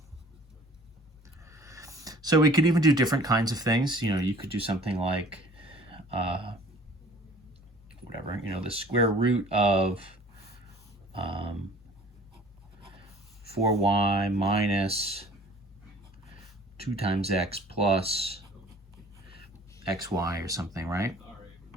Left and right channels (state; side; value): normal; both; correlation 0.50